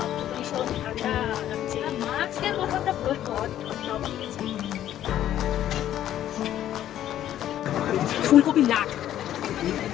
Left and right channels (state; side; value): quieter; right; 11.8 dB